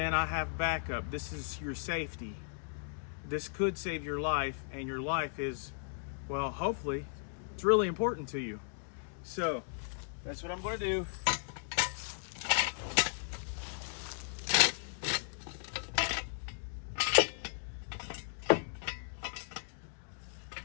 I have backup. This is your safety. This could save your life, and your life is, well, hopefully it's really important to you. So that's what I'm going to do.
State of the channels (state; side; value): silent; right; digital silence